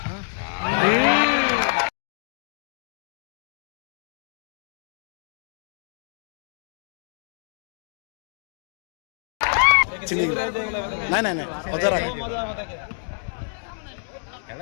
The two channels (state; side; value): silent; right; digital silence